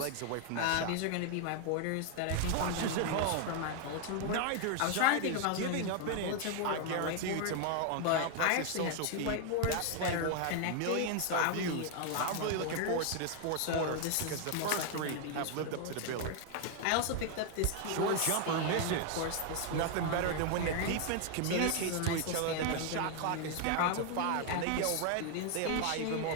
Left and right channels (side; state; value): both; different; correlation 0.00